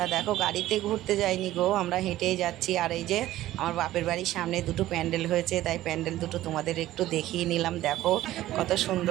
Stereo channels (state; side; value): quieter; left; 14.9 dB